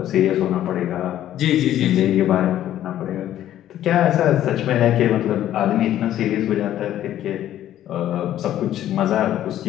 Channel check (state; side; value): quieter; right; 12.2 dB